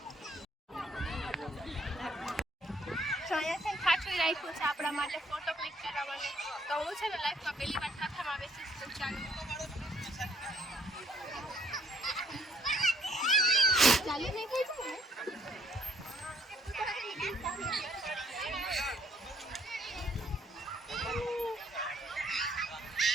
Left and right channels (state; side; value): normal; both; correlation 0.65